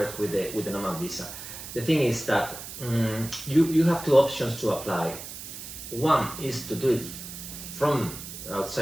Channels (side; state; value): right; noise; hiss, 11 dB below the sound